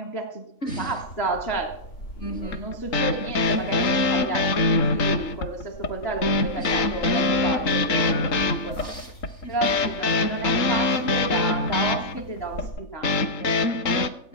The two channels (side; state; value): right; late; 3.4 ms